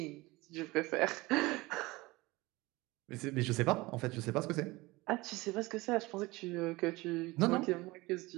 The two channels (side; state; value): left; quieter; 21.6 dB